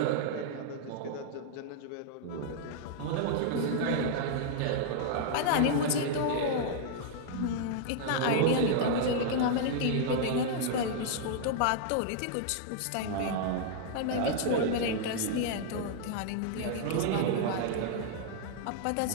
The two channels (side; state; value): both; different; correlation -0.01